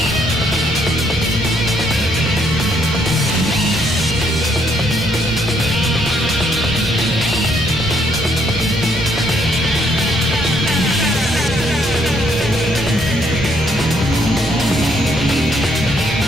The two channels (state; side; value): noise; left; rumble, 14 dB below the sound